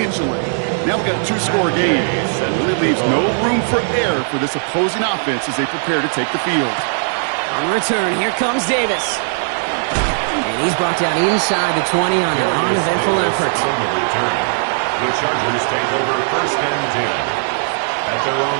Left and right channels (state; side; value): silent; left; digital silence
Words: Now we've got a 2-score game. It really leaves no room for error for this opposing offense as they prepare to take the field. On return, here comes Davis. And he's brought down inside the 20 on an uneventful effort. The Chargers take over first and 10 at their